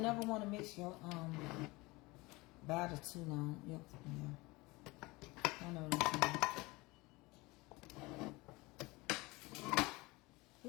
never want to mix your batter too long. Yep, yeah. I know what I'm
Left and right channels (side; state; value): right; quieter; 23.0 dB